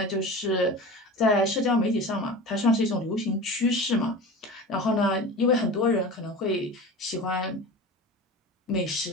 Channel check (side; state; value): both; normal; correlation 0.33